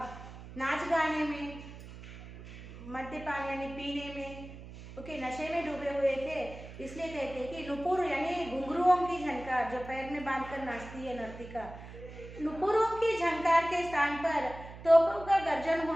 नाच गाने में, मद्यपान यानी पीने में, नशे में डूबे हुए थे। इसलिए कहते हैं कि नुपुर यानी घुंघरुओं की झनकार, जो पैर में बांधकर नाचती है नर्तिका। नुपुरों की झनकार के स्थान पर तोपों का गर्जन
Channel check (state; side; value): noise; right; hum, 14 dB below the sound